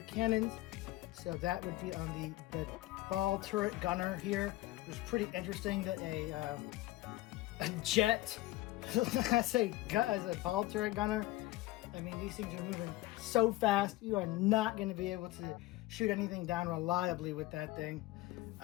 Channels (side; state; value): right; quieter; 17.8 dB